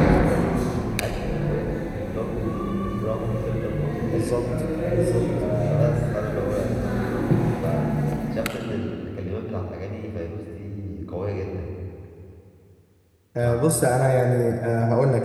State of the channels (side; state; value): both; identical; correlation 1.00